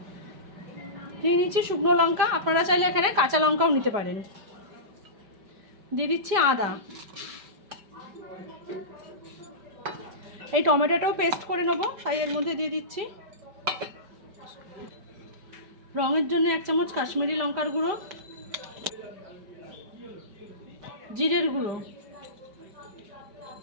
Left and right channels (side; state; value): left; late; 5.1 ms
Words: নিয়ে নিচ্ছি শুকনো লঙ্কা, আপনারা চাইলে এখানে কাঁচা লঙ্কাও নিতে পারেন। দিয়ে দিচ্ছি আদা। এই টমেটোটাও পেস্ট করে নেবো, তাই এর মধ্যে দিয়ে দিচ্ছি। রঙের জন্য 1 চামচ কাশ্মীরি লঙ্কার গুঁড়ো, জিরের গুঁড়ো,